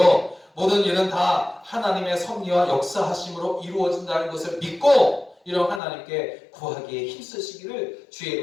모든 일은 다 하나님의 섭리와 역사하심으로 이루어진다는 것을 믿고 이런 하나님께 구하기에 힘쓰시기를 주의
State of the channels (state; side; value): drops out; right; at 5.8 s